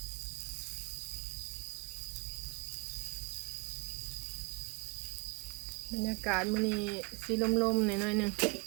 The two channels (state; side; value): quieter; left; 29.9 dB